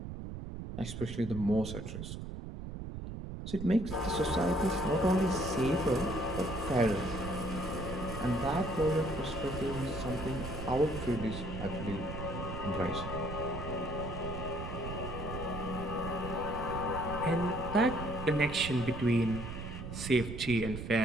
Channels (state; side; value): noise; right; rumble, 7 dB below the sound